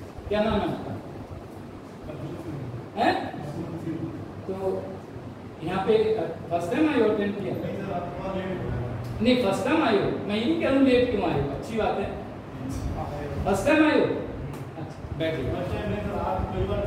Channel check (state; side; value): identical; both; correlation 1.00